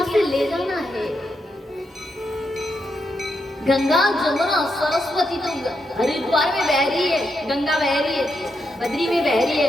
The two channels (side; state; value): both; normal; correlation 0.83